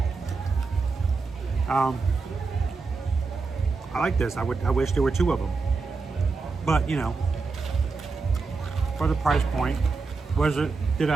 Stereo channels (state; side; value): quieter; left; 4.3 dB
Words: I like this. I wish there were 2 of them. But, for the price point, did